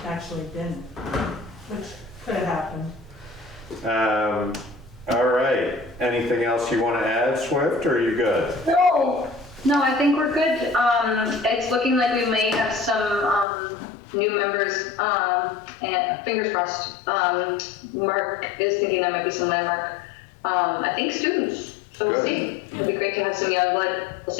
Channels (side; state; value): right; drops out; at 13.5 s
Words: I actually didn't, which could have happened. All right, anything else you want to add, Swift, or are you good? No, I think we're good. It's looking like we may have some new members, and fingers crossed. Mark is thinking there might be some landmark. I think students, so we'll Good. see. It'd be great to have some young blood. We'll